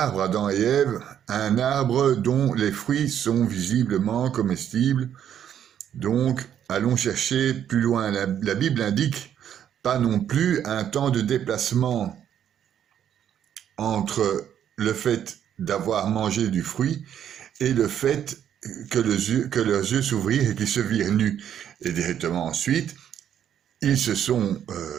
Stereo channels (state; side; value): quieter; left; 9.6 dB